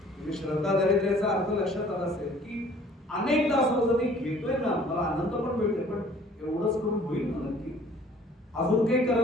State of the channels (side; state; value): both; normal; correlation 0.54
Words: श्रद्धा दारिद्र्याचा अर्थ लक्षात आला असेल की अनेकदा असं होतं मी घेतोय ना, मला आनंद पण मिळतोय, पण एवढंच करून होईल ना नक्की, अजून काही